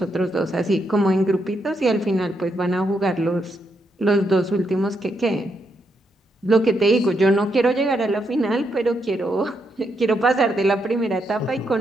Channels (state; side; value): normal; both; correlation 0.80